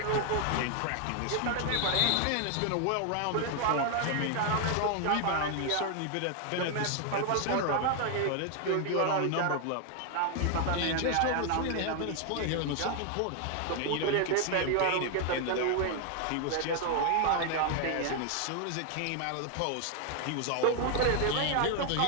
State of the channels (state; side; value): different; both; correlation 0.00